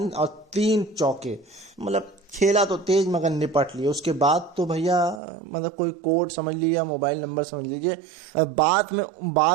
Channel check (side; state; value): left; drops out; at 5.2 s